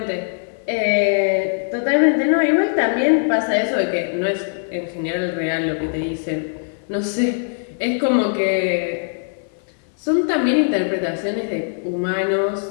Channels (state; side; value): silent; right; 58 dB below the other